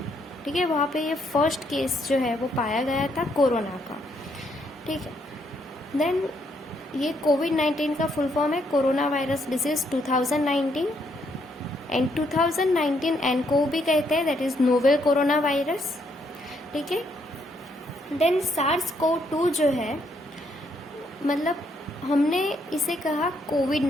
ठीक है, वहाँ पे ये फर्स्ट केस जो है वो पाया गया था कोरोना का। ठीक है, देन ये कोविड-19 का फुल फॉर्म है corona virus disease 2019 and 2019 nCoV भी कहते हैं, that is novel corona virus. ठीक है, देन सार्स-CoV-2 जो है, मतलब हमने इसे कहा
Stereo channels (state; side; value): normal; both; correlation 0.73